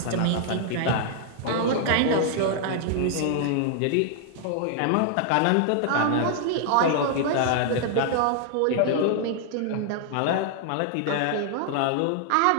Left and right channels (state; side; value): different; both; correlation -0.01